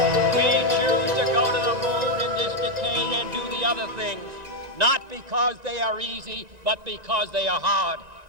Not because they are easy, but because they are hard.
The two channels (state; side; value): late; left; 1.9 ms